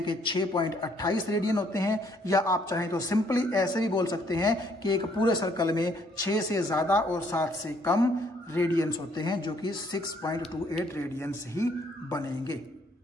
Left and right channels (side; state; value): both; normal; correlation 0.66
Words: कि 6.28 रेडियन होते हैं, या आप चाहें तो सिंपली ऐसे भी बोल सकते हैं कि एक पूरे सर्कल में 6 से ज्यादा और 7 से कम रेडियंस होते हैं, जो कि 6.28 रेडियंस ही बनेंगे।